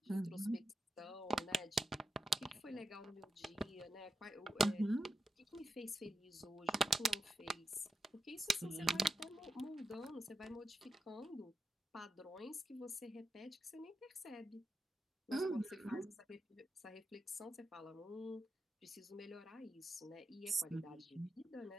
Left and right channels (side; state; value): both; normal; correlation 0.87